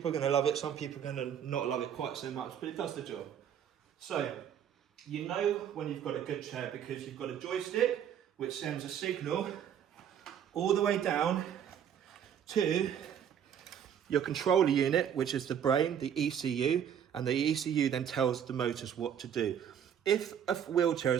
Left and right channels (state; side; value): quieter; left; 8.9 dB